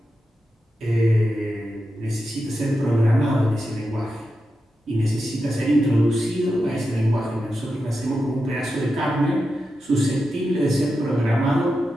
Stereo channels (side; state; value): both; normal; correlation 0.89